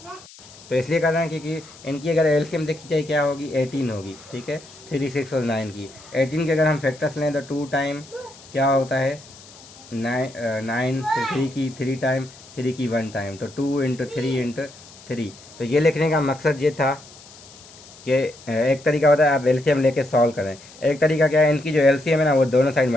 तो इसलिए कर रहे हैं क्योंकि इनकी अगर एलसीएम देखी जाए क्या होगी, 18 होगी। ठीक है, 3, 6 और 9 की 18 के अगर हम फैक्टर्स लें तो 2 टाइम क्या होता है 9, फिर 3 की 3 टाइम, 3 की 1 टाइम, तो 2 इंटू 3 इंटू 3। तो ये लिखने का मकसद ये था कि एक तरीका होता है आप एलसीएम लेके सॉल्व करें, एक तरीका क्या है, इनकी जो एलसीएम है ना वो दोनों साइड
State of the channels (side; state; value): left; noise; hiss, 21 dB below the sound